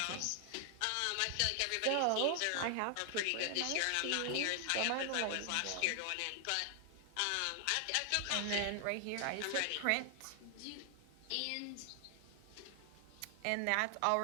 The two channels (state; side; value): different; both; correlation 0.00